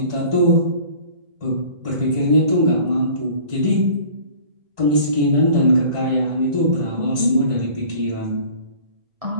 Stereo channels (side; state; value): left; late; 1.2 ms